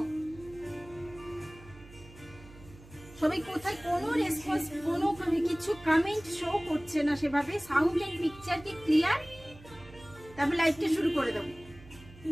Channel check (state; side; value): noise; right; hum, 20 dB below the sound